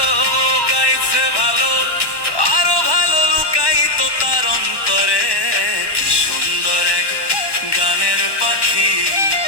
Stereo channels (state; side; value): late; right; 1.1 ms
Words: গাইছে ভালো, আরো ভালো লুকাইতো তার অন্তরে। কি সুন্দর এক গানের পাখি